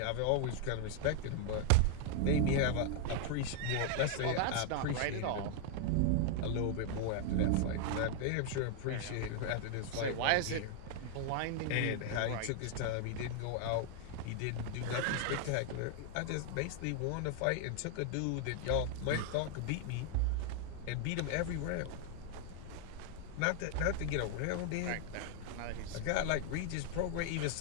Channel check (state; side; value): different; both; correlation 0.00